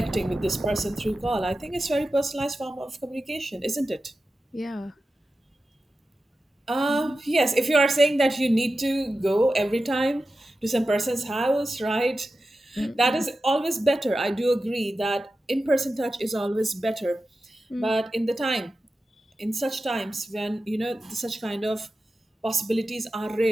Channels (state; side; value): normal; both; correlation 0.93